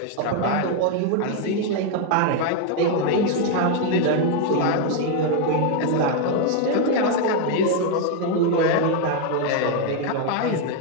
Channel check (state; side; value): different; both; correlation 0.01